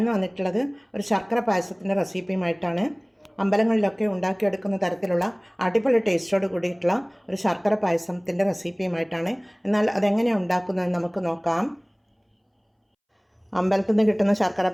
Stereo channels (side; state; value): both; identical; correlation 1.00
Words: വന്നിട്ടുള്ളത് ഒരു ശർക്കര പായസത്തിൻ്റെ റെസിപ്പിയുമായിട്ടാണ്. അമ്പലങ്ങളിലൊക്കെ ഉണ്ടാക്കിയെടുക്കുന്ന തരത്തിലുള്ള അടിപൊളി ടേസ്റ്റോട് കൂടിയിട്ടുള്ള ഒരു ശർക്കര പായസത്തിൻ്റെ റെസിപ്പിയുമായിട്ടാണ്. എന്നാൽ അതെങ്ങനെയാണ് ഉണ്ടാക്കുന്നതെന്ന് നമുക്ക് നോക്കാം. അമ്പലത്തിൽ നിന്ന് കിട്ടുന്ന ശർക്കര